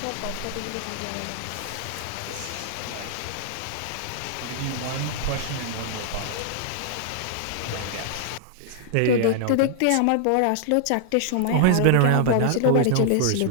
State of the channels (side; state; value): both; different; correlation -0.01